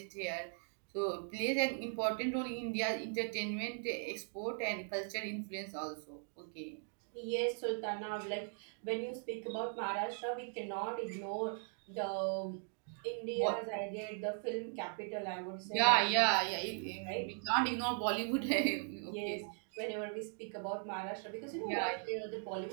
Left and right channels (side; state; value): left; silent; 52 dB below the other